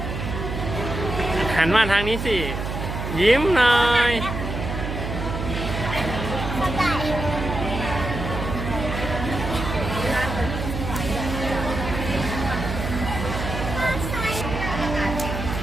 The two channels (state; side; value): noise; right; hum, 4 dB below the sound